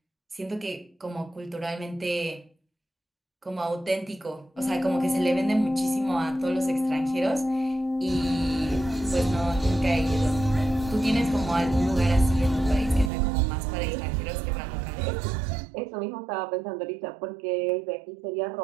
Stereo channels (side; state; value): left; drops out; at 13.1 s